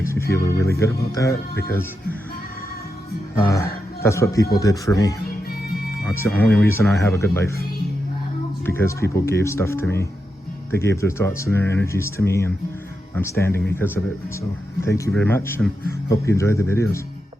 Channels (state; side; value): normal; both; correlation 0.87